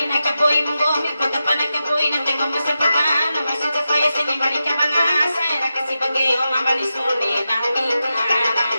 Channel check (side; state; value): both; inverted; correlation -0.90